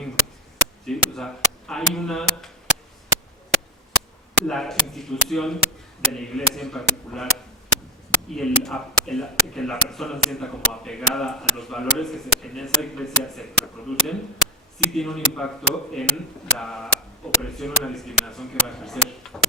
¿sí? O sea, hay la institución de la iglesia en particular y que la persona se sienta como apegada a los valores que en esa iglesia se reproducen, sí tiene un impacto en la opresión o la discriminación que va a ejercer.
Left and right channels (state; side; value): normal; both; correlation 0.12